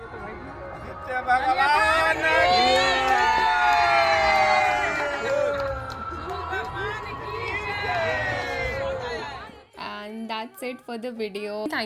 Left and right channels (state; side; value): identical; both; correlation 1.00